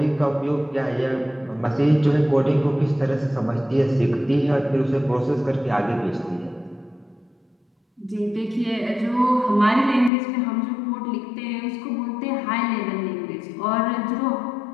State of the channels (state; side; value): drops out; right; at 10.1 s